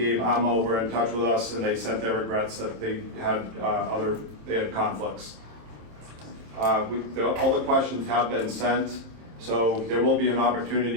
Amo were in touch with us, and they sent their regrets that they had conflicts. All the questions have been sent, so there will be an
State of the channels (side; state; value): left; late; 27 ms